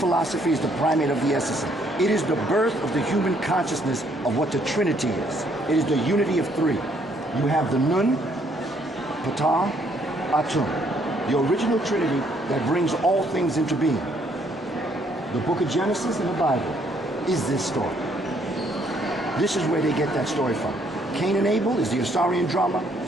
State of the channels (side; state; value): both; normal; correlation 0.68